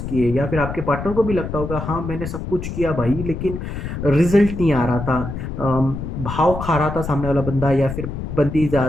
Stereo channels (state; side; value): noise; left; rumble, 6 dB below the sound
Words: किए, या फिर आपके पार्टनर को भी लगता होगा हाँ मैंने सब कुछ किया भाई, लेकिन रिजल्ट नहीं आ रहा था। भाव खा रहा था सामने वाला बंदा या फिर बंदी